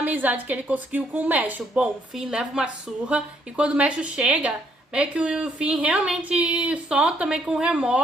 que ele conseguiu com o Meshul. Bom, o Finn leva uma surra e quando o Meshul chega, meio que o Finn realmente solta meio com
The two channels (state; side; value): normal; both; correlation 0.70